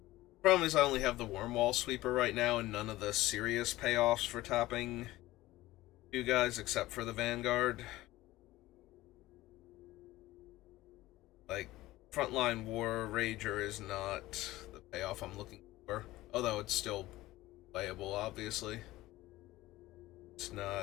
Problem is I only have the Wormwall Sweeper right now and none of the serious payoffs for tapping you guys except for the Vanguard. Like, Frontline War Rager is not the payoff I'm looking for. Although it's still playable, obviously. It's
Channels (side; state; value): right; quieter; 17.3 dB